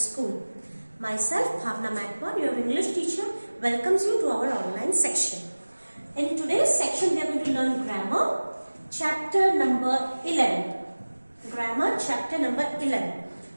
Myself Bhavna Makwar, your English teacher, welcomes you to our online section. In today's section we are going to learn grammar, chapter number 11. Grammar chapter number 11.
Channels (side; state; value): both; inverted; correlation -1.00